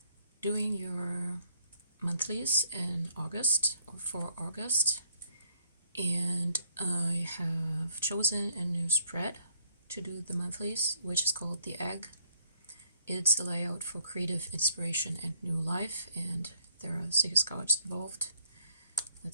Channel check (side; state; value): both; inverted; correlation -0.67